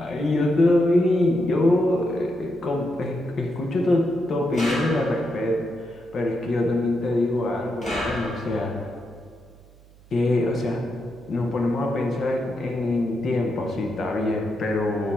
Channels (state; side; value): noise; right; hum, 25 dB below the sound